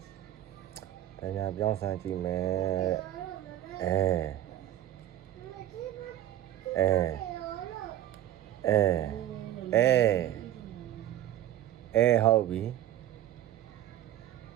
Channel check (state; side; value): quieter; left; 12.7 dB